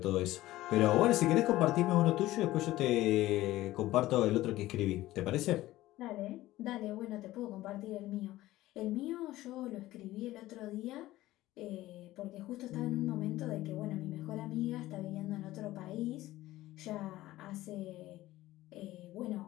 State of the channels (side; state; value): right; quieter; 16.3 dB